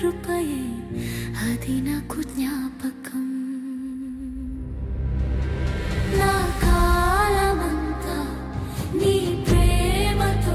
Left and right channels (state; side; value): identical; both; correlation 1.00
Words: అది నాకు జ్ఞాపకం.